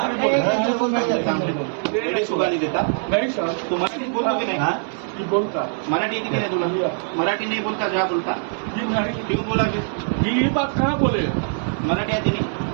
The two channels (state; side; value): silent; left; 64 dB below the other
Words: सुगाली देता नहीं सर, तू मराठी बोलतो की नाही जी बोलता मराठी येते की नाही तुला मराठी नहीं बोलता जा बोलता जी नहीं क्यों बोला फिर जी ये बात कहाँ बोले मराठी आती नहीं